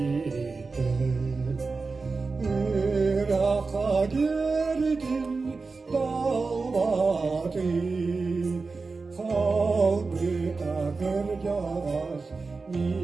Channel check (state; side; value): quieter; left; 4.2 dB